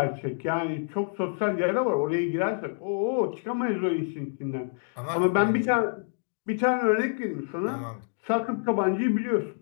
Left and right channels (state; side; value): silent; right; digital silence